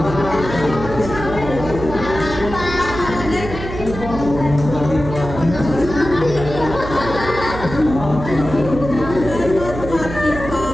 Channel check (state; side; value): noise; right; hum, 9 dB below the sound